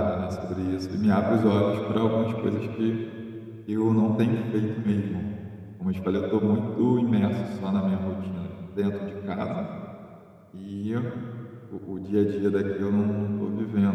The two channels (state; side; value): identical; both; correlation 1.00